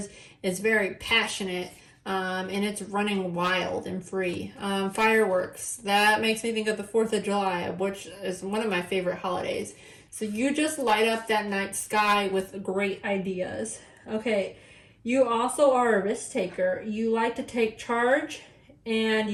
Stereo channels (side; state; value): both; identical; correlation 1.00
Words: It's very passionate. And it's running wild and free. Fireworks, that makes me think of the 4th of July, which is one of my favorite holidays. So you just light up that night sky with great ideas. Okay, you also are a risk taker. You like to take charge and